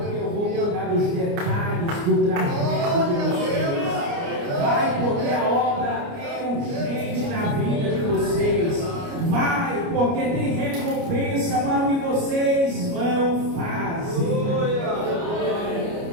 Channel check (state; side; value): late; left; 29 ms